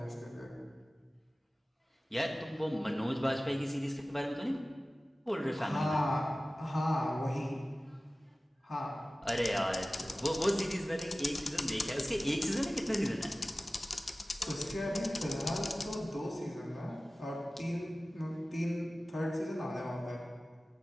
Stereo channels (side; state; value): both; normal; correlation 0.97